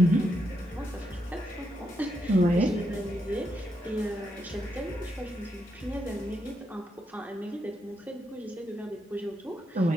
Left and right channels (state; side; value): normal; both; correlation 0.81